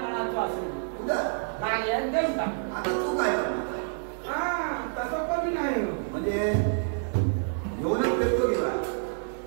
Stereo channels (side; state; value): left; silent; digital silence